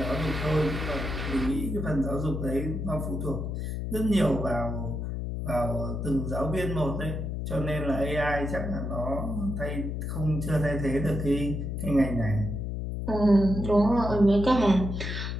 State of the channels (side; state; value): left; noise; hum, 3 dB below the sound